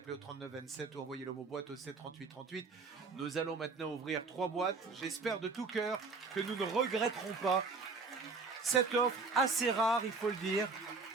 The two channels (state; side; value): quieter; left; 4.2 dB